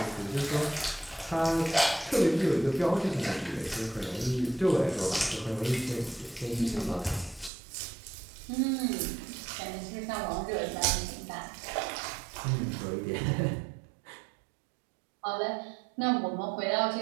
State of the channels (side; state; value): left; drops out; at 7.5 s